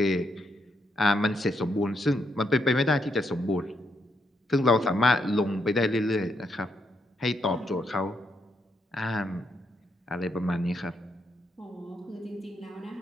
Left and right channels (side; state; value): both; normal; correlation 0.78